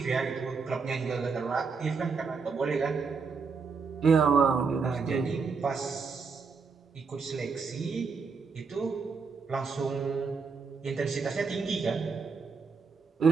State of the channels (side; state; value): left; quieter; 5.1 dB